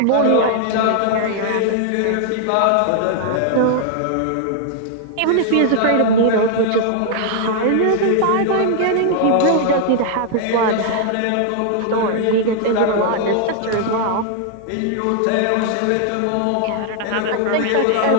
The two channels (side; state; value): both; different; correlation 0.00